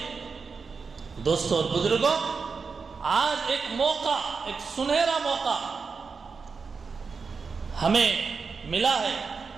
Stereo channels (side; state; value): left; quieter; 5.0 dB